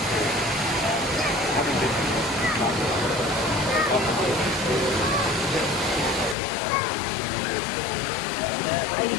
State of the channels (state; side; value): drops out; right; at 6.4 s